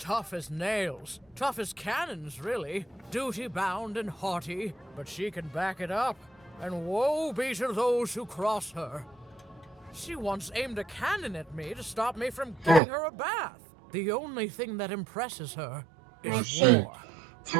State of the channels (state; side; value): drops out; left; at 12.8 s